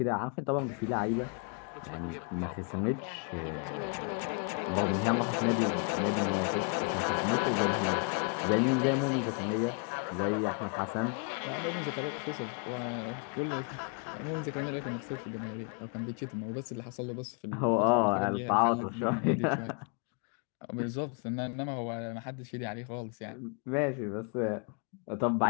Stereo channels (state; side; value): quieter; right; 38.5 dB